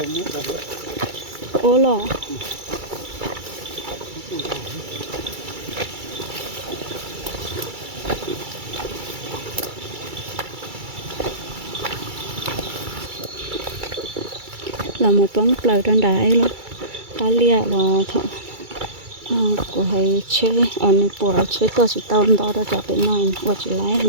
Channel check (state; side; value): late; left; 2.3 ms